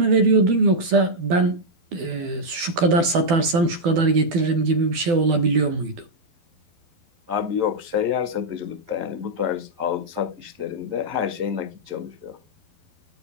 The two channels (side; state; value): left; late; 12 ms